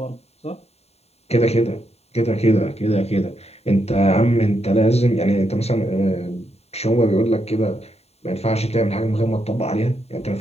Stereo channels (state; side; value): late; right; 0.30 ms